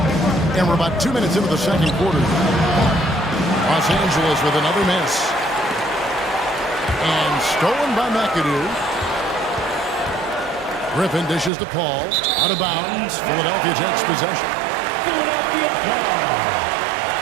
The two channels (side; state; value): left; drops out; at 11.5 s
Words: And we're about 2 minutes into the second quarter. Los Angeles with another miss. And stolen by McAdoo. Griffin dishes to Paul. Out of bounds. Philadelphia takes possession.